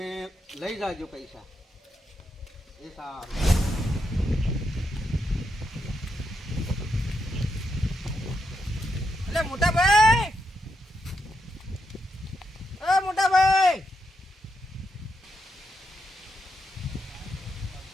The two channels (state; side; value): normal; both; correlation 0.83